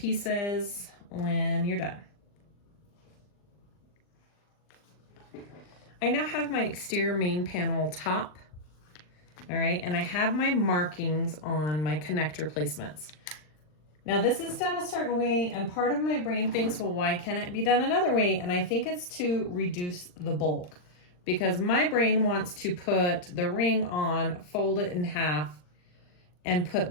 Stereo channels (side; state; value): right; late; 39 ms